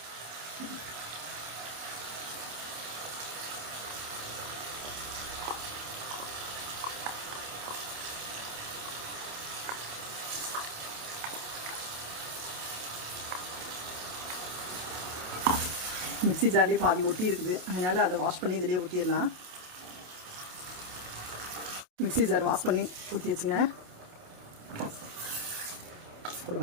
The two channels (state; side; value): late; left; 27 ms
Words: மிக்ஸி ஜார்லேயே பாதி ஒட்டி இருக்குது, அதனால் அதை வாஷ் பண்ணி இதிலே ஊற்றிடலாம். மிக்ஸி ஜார் வாஷ் பண்ணி ஊற்றி வச்சுங்க. கூட